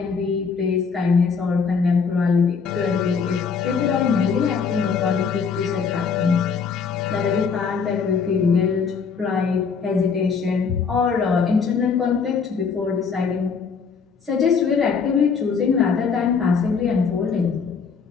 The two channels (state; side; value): quieter; right; 5.7 dB